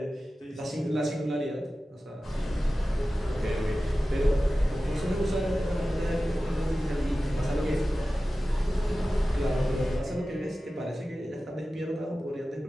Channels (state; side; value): normal; both; correlation 0.95